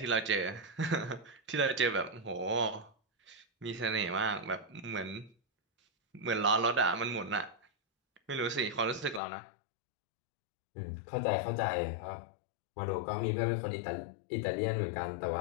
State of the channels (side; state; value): right; drops out; at 9.2 s